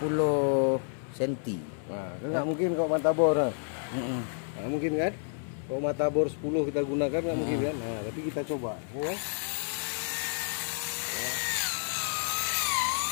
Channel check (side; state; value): right; silent; 58 dB below the other